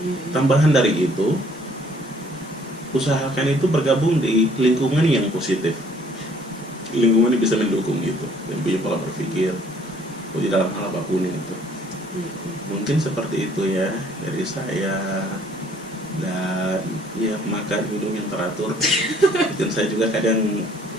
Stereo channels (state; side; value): normal; both; correlation 0.60